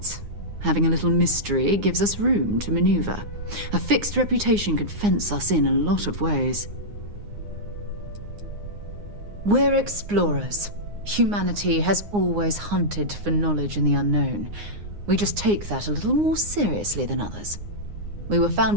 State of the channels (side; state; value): left; late; 9.7 ms